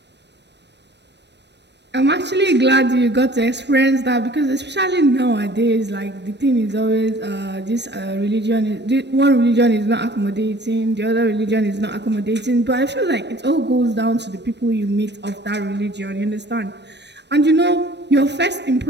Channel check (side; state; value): left; late; 0.50 ms